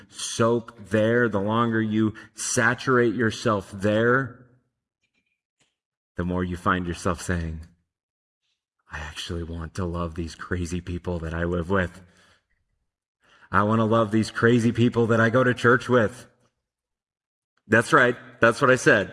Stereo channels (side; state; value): both; identical; correlation 1.00